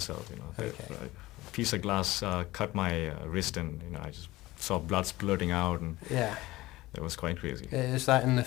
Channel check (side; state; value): right; quieter; 18.3 dB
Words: Okay. A piece of glass cut my wrist, and I just saw blood splurting out, and it was quite crazy. Is that in the